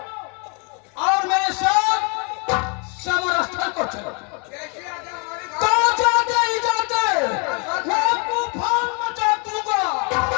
और मेरे साथ समर स्थल को चलो। तो जाते ही जाते मैं तूफान मचा दूंगा।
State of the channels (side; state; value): right; quieter; 35.7 dB